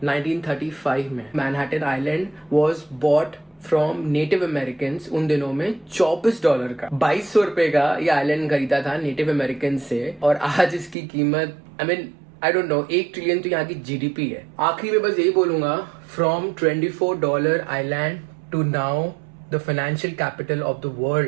1935 में। Manhattan island was bought from native American उन दिनों में $24 का, 2200 रुपए का ये आइलैंड खरीदा था नेटिव अमेरिकन से, और आज इसकी कीमत आई डोंट नो, 1 ट्रिलियन तो यहाँ की GDP है। आखिरी में बस यही बोलूंगा, from $24 island to now the financial capital of the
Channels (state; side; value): drops out; left; at 11.0 s